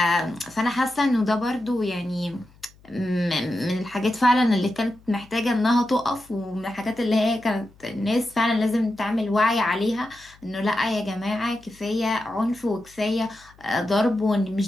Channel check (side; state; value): left; noise; hum, 27 dB below the sound